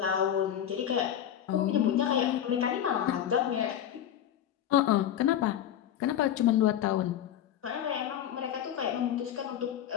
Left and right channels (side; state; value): right; quieter; 10.4 dB